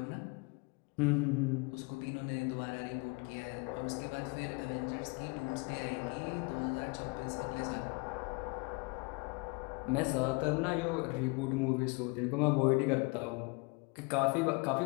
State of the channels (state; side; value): quieter; right; 29.5 dB